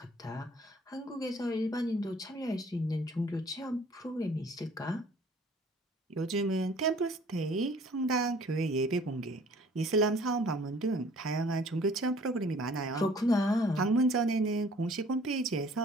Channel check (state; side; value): normal; both; correlation 0.54